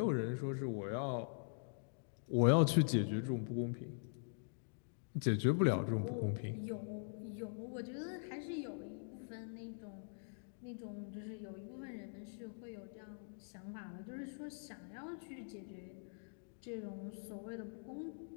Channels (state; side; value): silent; right; digital silence